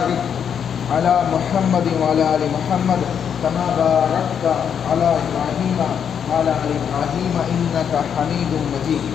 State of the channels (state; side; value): quieter; right; 7.9 dB